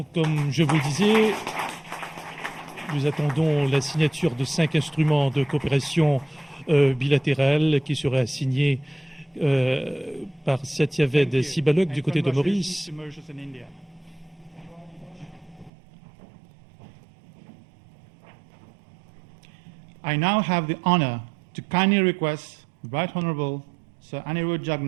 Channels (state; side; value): drops out; left; at 15.7 s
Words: comme je vous le disais, nous attendons la signature de 5 instruments de coopération bilatérale qui seraient signés par Satyaved Sibalok du côté de Maurice. I now have the honor to kindly request the Right Honourable Sir Anerood